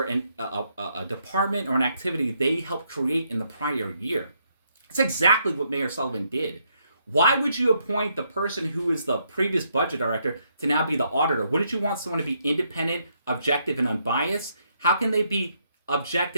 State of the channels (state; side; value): inverted; both; correlation -0.75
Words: a department or an activity they helped create in the prior year. That's exactly what Mayor Sullivan did. Why would you appoint the person who is the previous budget director to now be the auditor? Wouldn't you want someone to be independent, objective, and unbiased? How can they be